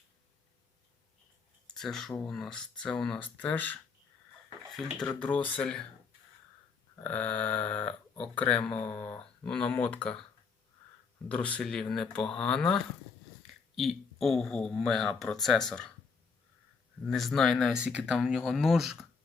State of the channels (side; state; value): right; quieter; 5.2 dB